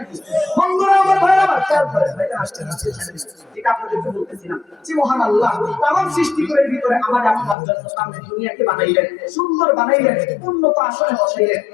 বন্ধুরা আমার, ভাইরা আমার, খেয়াল করেন, ভাইজান আসতে ঠিক আপনাদেরকে বলতেছিলাম যে মহান আল্লাহ তামাম সৃষ্টিগুলোর ভিতরে আমার আপনার জন্য সামনে দুনিয়াকে বানাইলেন, সুন্দর বানাইলেন, উন্নত আসনে বসাইলেন।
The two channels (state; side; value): drops out; right; at 7.6 s